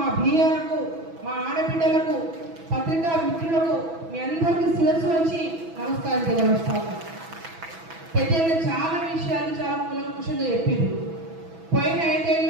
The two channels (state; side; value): late; left; 6.1 ms